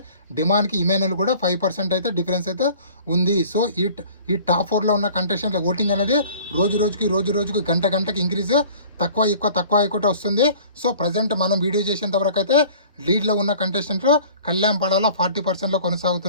డిమాండ్కి ఇమాన్యుయల్ కూడా 5% అయితే డిఫరెన్స్ అయితే ఉంది. సో ఈ టాప్ 4లో ఉన్న కంటెస్టెంట్ల ఓటింగ్ అనేది రోజుకి గంటకి ఇంక్రీజ్, తక్కువ ఎక్కువ వస్తుంది. సో ప్రజెంట్ మనం వీడియో చేసేంత వరకు అయితే లీడ్లో ఉన్న కంటెస్టెంట్లు కళ్యాణ్ పడాలా 40%లో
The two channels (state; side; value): inverted; both; correlation -0.48